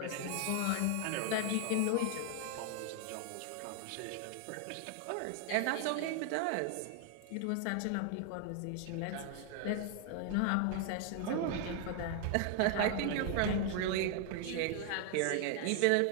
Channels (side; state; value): both; different; correlation 0.00